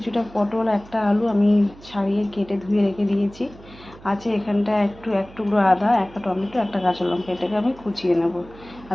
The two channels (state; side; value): noise; right; hum, 21 dB below the sound